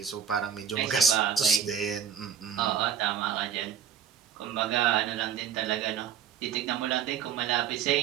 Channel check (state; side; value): quieter; left; 8.2 dB